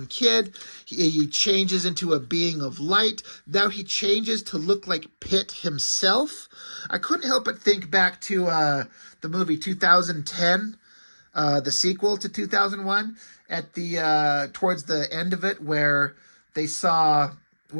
kid. He changes into a being of light. Now he changes to look like Pitt himself. I couldn't help but think back to the movie 2010, the sequel to 2001, at the towards the end of it where they saw,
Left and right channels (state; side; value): inverted; both; correlation -1.00